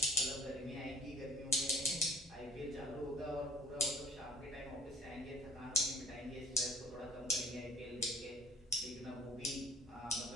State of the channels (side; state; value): both; normal; correlation 0.56